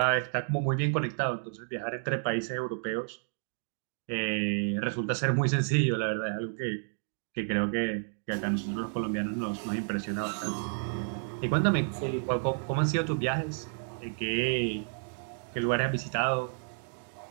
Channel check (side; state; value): left; silent; 57 dB below the other